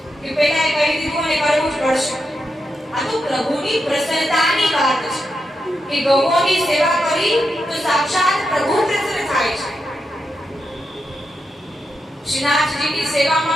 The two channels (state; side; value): normal; both; correlation 0.85